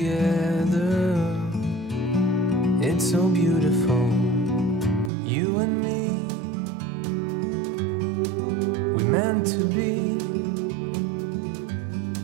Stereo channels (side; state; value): left; drops out; at 5.1 s